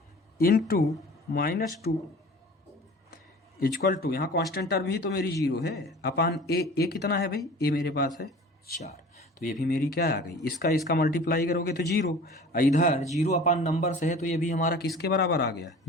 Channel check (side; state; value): both; normal; correlation 0.43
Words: इनटू -2 इक्वल टू यहाँ कांस्टेंट टर्म ही तो मेरी 0 है, अपान ए कितना है भाई, ए मेरे पास है 4, तो ये भी मेरी क्या आ गई, इसका मल्टीप्लाई करोगे तो 0, इधर 0 अपान नंबर से है तो ये भी हमारा किसके बराबर आ गया,